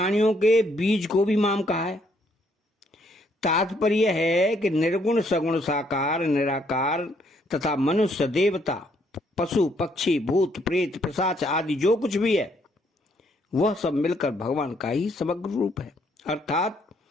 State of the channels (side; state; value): both; normal; correlation 0.70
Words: के बीज को भी माम कहा है। तात्पर्य है कि निर्गुण सगुण साकार निराकार तथा मनुष्य देवता पशु पक्षी भूत प्रेत पिशाच आदि जो कुछ भी है वह सब मिलकर भगवान का ही समग्र रूप है। अर्थात